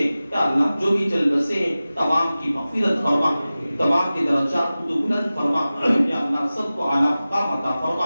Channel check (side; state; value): both; inverted; correlation -0.96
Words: یا اللہ جو بھی چل بسے ہیں تمام کی مغفرت فرما، تمام کے درجات کو بلند فرما۔ یا اللہ سب کو اعلیٰ مقام عطا